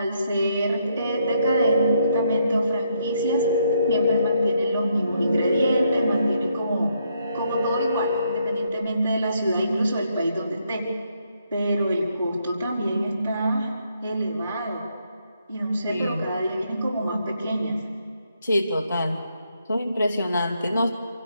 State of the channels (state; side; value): inverted; both; correlation -0.75